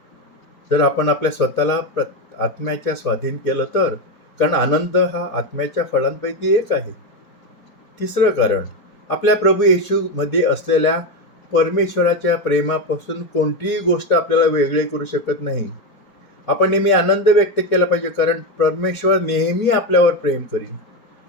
जर आपण आपल्या स्वतःला आत्म्याच्या स्वाधीन केलं तर, कारण आनंद हा आत्म्याच्या फळांपैकी एक आहे. तिसरं कारण, आपल्या प्रभू येशूमध्ये असलेल्या परमेश्वराच्या प्रेमापासून कोणतीही गोष्ट आपल्याला वेगळे करू शकत नाही. आपण नेहमी आनंद व्यक्त केला पाहिजे, कारण परमेश्वर नेहमी आपल्यावर प्रेम करील.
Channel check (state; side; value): late; right; 4.8 ms